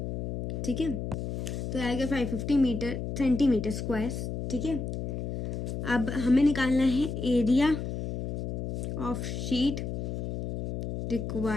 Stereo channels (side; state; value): left; noise; hum, 3 dB below the sound